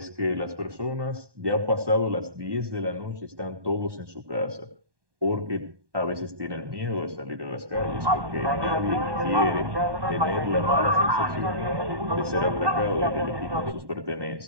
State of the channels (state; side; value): late; left; 1.2 ms